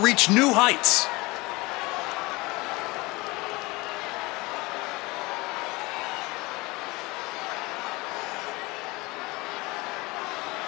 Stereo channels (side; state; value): right; quieter; 23.2 dB